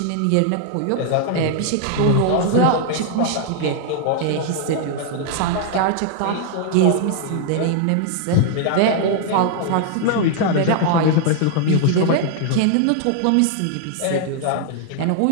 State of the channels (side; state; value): both; different; correlation -0.01